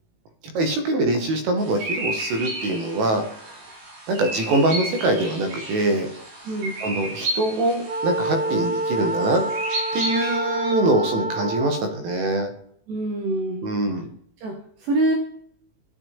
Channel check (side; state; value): left; late; 18 ms